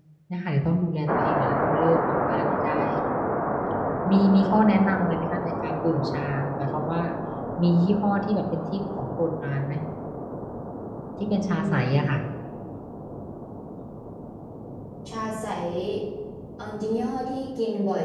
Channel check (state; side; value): identical; both; correlation 1.00